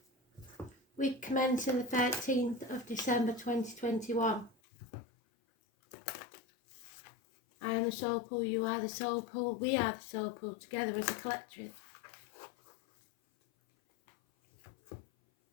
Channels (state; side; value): drops out; right; at 4.5 s